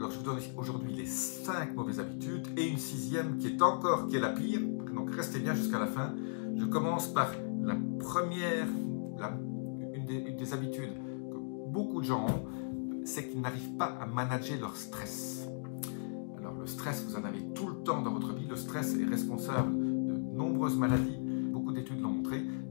je vous donne aujourd'hui les 5 mauvaises habitudes et une 6e qui est la pire, donc restez bien jusqu'à la fin. Je commence par la première, une des habitudes que beaucoup de gens ont, c'est qu'ils n'arrivent pas à manager leur stress. Alors le stress, vous en avez tout le temps dans votre vie, le stress est responsable de nombreuses maladies, beaucoup d'études l'ont montré.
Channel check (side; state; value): right; silent; digital silence